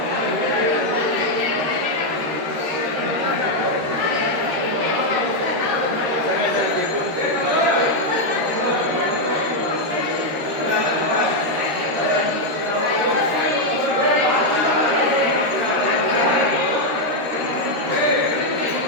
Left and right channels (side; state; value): left; late; 13 ms